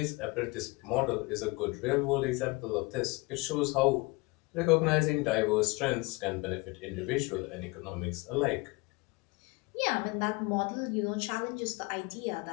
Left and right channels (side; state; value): right; quieter; 25.5 dB